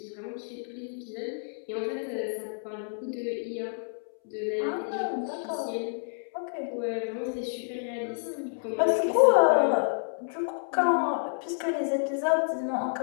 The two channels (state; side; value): silent; right; 58 dB below the other